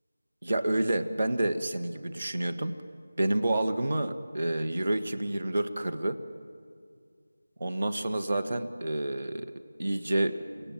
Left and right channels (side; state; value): both; inverted; correlation -0.95